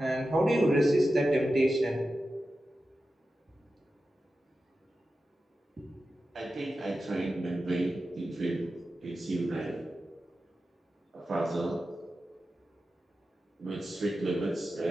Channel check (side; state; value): both; normal; correlation 0.92